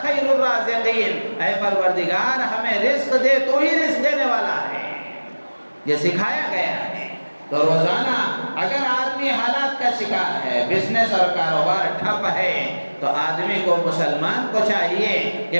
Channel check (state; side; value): inverted; both; correlation -1.00